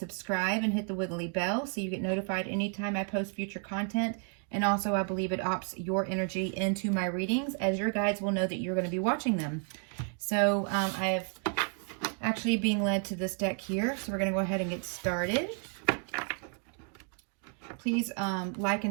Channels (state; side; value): quieter; left; 38.1 dB